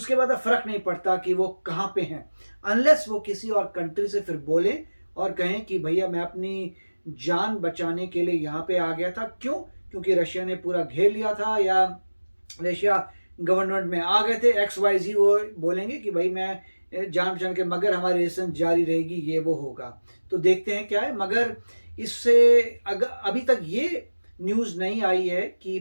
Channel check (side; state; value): both; inverted; correlation -1.00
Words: बाद अब फर्क नहीं पड़ता कि वो कहाँ पे हैं, अनलेस वो किसी और कंट्री से फिर बोले और कहें कि भैया मैं अपनी जान बचाने के लिए यहाँ पे आ गया था। क्यों? क्योंकि रशिया ने पूरा घेर लिया था, या रशिया गवर्नमेंट में आ गए थे XYZ, वो बोलेंगे कि भाई मैं जान बचाने के, मगर हमारी रेजिस्टेंस जारी रहेगी, ये वो होगा। तो देखते हैं क्या है। मगर इससे अभी तक ये न्यूज़ नहीं आई है कि